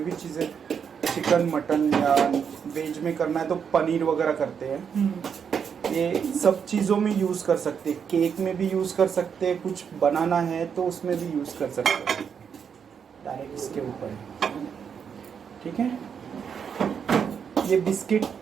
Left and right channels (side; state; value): left; quieter; 7.1 dB